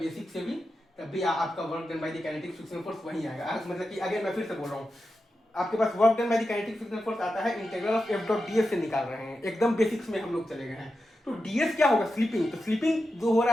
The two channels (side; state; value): both; normal; correlation 0.90